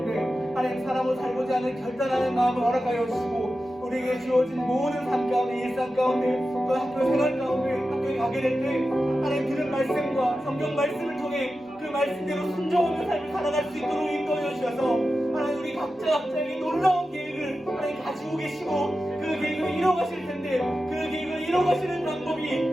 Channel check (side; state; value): both; normal; correlation 0.92